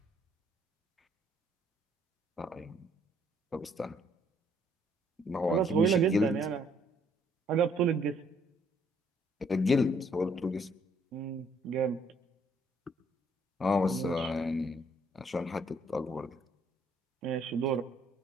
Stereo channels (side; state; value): both; normal; correlation 0.66